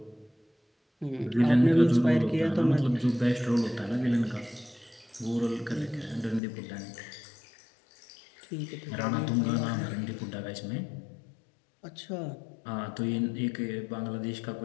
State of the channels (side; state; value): right; drops out; at 6.4 s